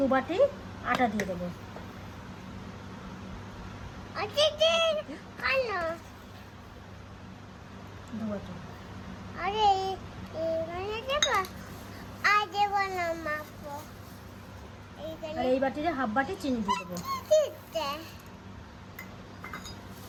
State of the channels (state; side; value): identical; both; correlation 1.00